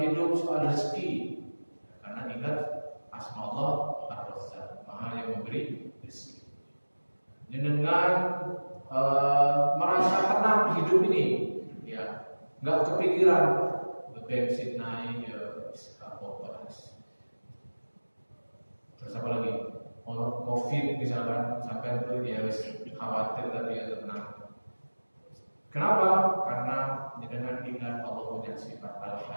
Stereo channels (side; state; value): both; inverted; correlation -1.00